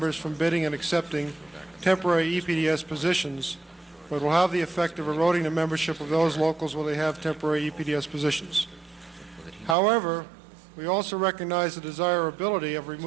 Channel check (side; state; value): left; drops out; at 9.8 s